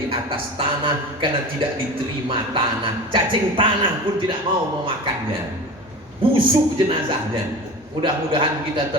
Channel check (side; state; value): both; normal; correlation 0.33